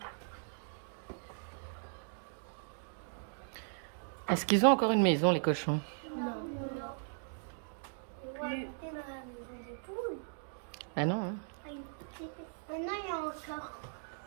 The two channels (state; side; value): silent; left; digital silence